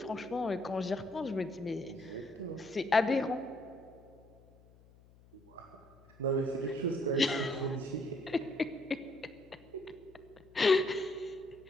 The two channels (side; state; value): left; noise; hum, 25 dB below the sound